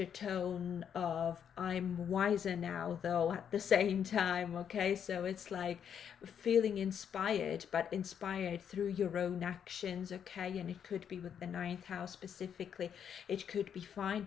of I'm wiser now though at the same time, okay? So it's like feeling inspired, but inspired through your own actions, okay? And it could be with the ninth house specifically, it could be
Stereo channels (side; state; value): right; quieter; 8.3 dB